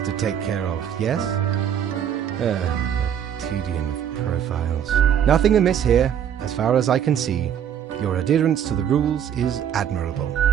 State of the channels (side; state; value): left; quieter; 9.1 dB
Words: to take care of, yes? The tedium of profiles. Nothing amiss here, as far as I can see. Your adherence to the rules is admirable.